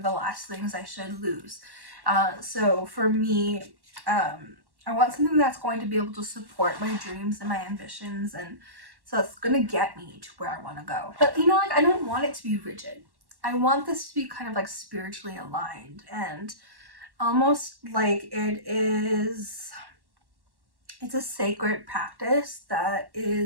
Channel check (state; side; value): late; left; 1.1 ms